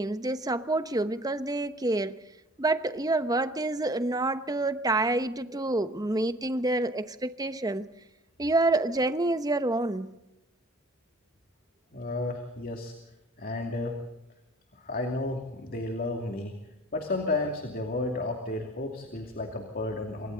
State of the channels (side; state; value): both; normal; correlation 0.50